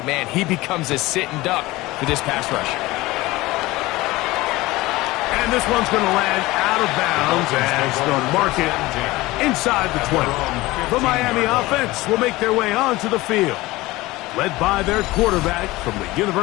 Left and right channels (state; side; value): quieter; right; 19.6 dB